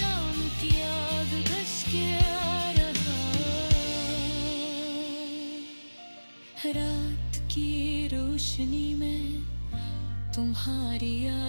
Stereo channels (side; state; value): both; inverted; correlation -1.00